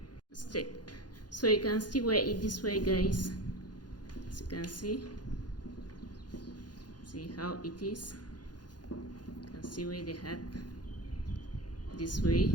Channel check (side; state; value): right; late; 0.69 ms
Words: So you can still wear it this way, guys. As you can see how it is. You can see wear the hat this way.